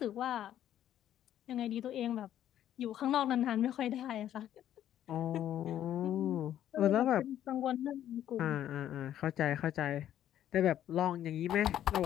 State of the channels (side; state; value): right; quieter; 11.3 dB